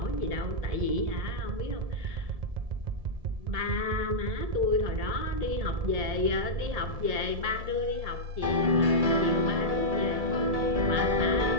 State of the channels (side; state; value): left; late; 1.7 ms